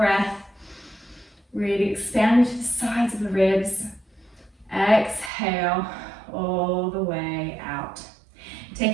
Really expand to the sides of the ribs. Exhale, all the way out.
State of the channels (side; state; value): left; drops out; at 5.3 s